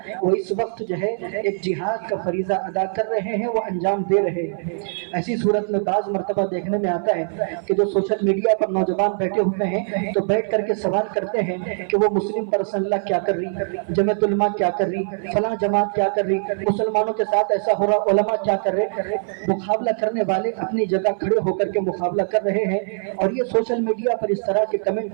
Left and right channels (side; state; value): left; silent; 60 dB below the other